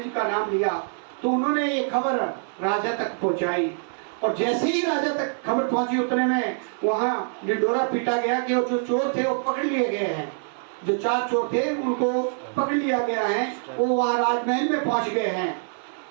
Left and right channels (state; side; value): silent; left; digital silence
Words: जी का नाम लिया तो उन्होंने ये खबर राजा तक पहुँचाई, और जैसे ही राजा तक खबर पहुंची उतने में वहाँ डिंडोरा पीटा गया कि वो जो चोर थे वो पकड़ लिए गए हैं। जो 4 चोर थे उनको पकड़ लिया गया है, वो वहाँ राजमहल में पहुंच गए हैं।